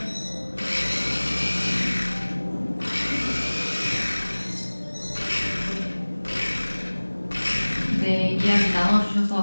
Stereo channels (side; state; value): both; inverted; correlation -1.00